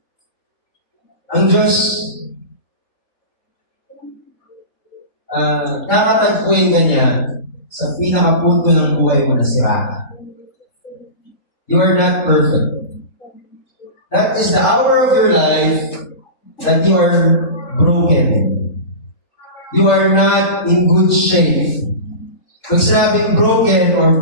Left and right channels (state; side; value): late; right; 3.4 ms